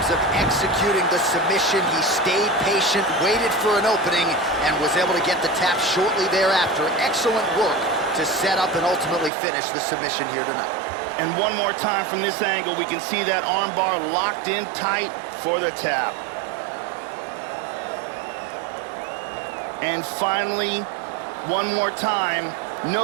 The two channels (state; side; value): drops out; left; at 9.3 s